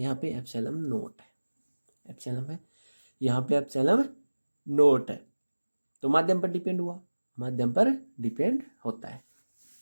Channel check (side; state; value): both; inverted; correlation -1.00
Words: पे एप्सिलॉन नोट है। एप्सिलॉन है, यहाँ पे एप्सिलॉन नोट है। तो माध्यम पर डिपेंड हुआ, माध्यम पर डिपेंड होता है।